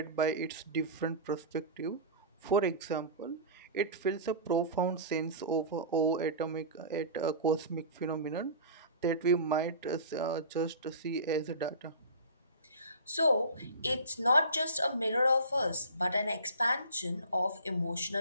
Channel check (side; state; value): both; inverted; correlation -0.36